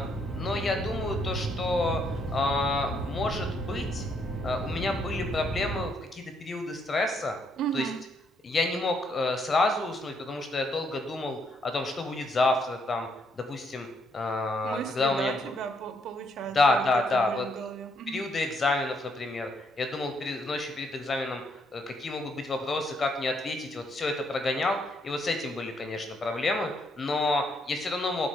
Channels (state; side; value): normal; both; correlation 0.73